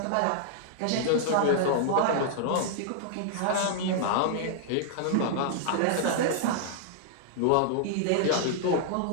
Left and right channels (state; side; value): different; both; correlation -0.01